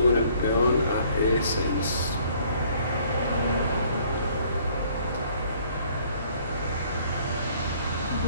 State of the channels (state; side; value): inverted; both; correlation -0.60